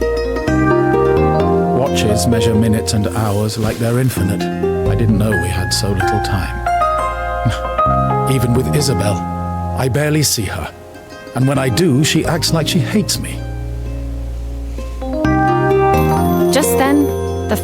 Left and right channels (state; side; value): identical; both; correlation 1.00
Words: Watches measure minutes and hours like they're infinite. I didn't know we had so little time. Even with Isabel, I barely see her. And when I do, she acts like she hates me. Just then, the